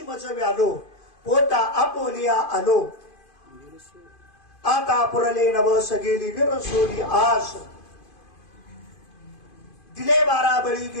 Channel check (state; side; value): late; right; 2.5 ms